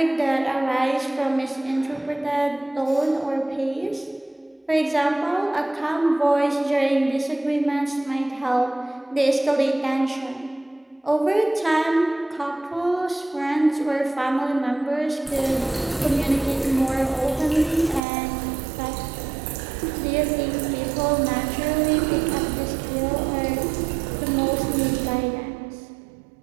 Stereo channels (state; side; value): drops out; left; at 18.0 s